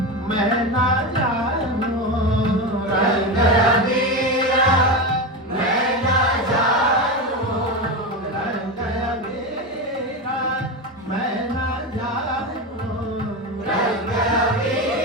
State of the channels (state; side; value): normal; both; correlation 0.18